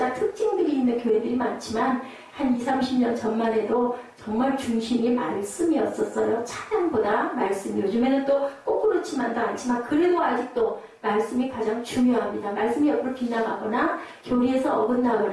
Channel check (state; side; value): identical; both; correlation 1.00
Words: 특징들이 있는 교회들이 많지만 한 20, 30년 전만 해도 정말 중심이 말씀이었었어요. 찬양보다 말씀. 요즘에는 또 꼭 그렇지만도 않지만 그래도 아직도 말씀이 가장 중요합니다. 말씀이 옆으로 빗나가거나 교리에서